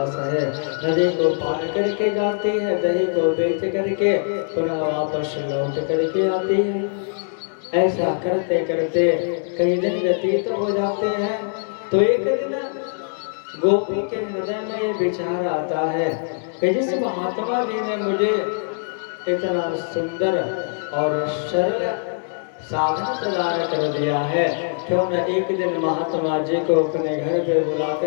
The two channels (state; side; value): silent; right; 64 dB below the other